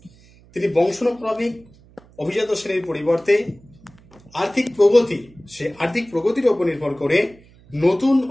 তিনি বংশানুক্রমিক অভিজাত শ্রেণীর পরিবর্তে আর্থিক প্রগতির উপর নির্ভর করে নতুন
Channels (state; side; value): noise; right; hum, 27 dB below the sound